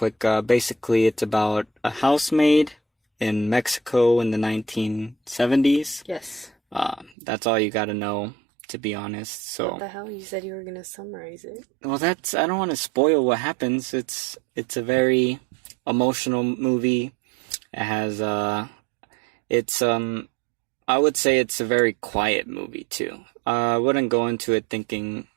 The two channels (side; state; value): left; drops out; at 7.2 s